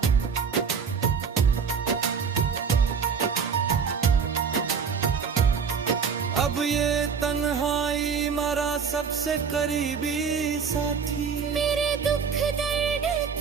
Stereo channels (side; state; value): left; quieter; 6.2 dB